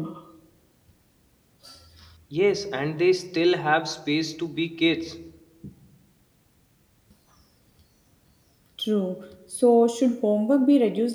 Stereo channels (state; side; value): identical; both; correlation 1.00